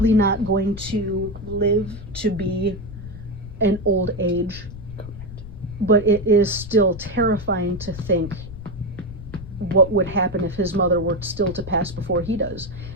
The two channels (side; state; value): left; noise; rumble, 12 dB below the sound